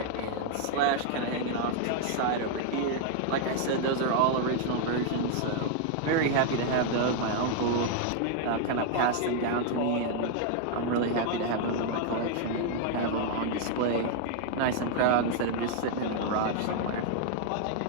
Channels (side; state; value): both; different; correlation 0.00